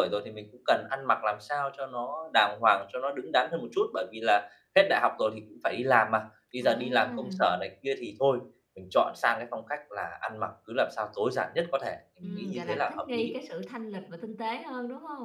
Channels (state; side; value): identical; both; correlation 1.00